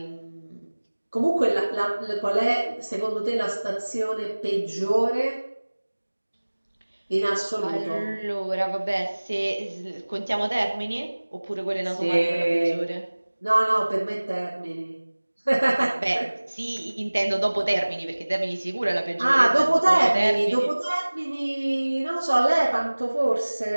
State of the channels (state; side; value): inverted; both; correlation -1.00